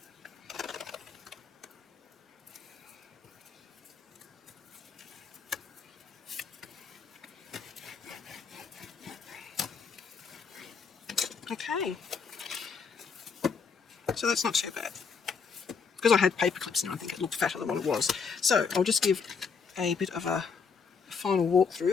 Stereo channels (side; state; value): right; quieter; 5.6 dB